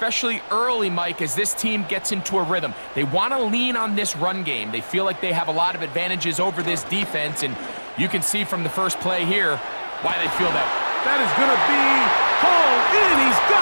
early, Mike, as this team gets into a rhythm. They want to lean on this run game. They feel like they have a lot of advantages over this defense, and you can see from the first play here why they feel that. That is going to be hauled in. He's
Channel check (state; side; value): inverted; both; correlation -1.00